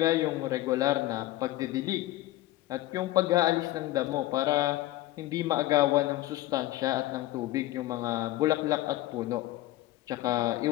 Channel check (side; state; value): right; quieter; 16.2 dB